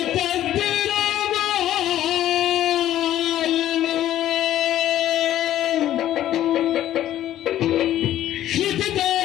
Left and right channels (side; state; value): right; quieter; 12.6 dB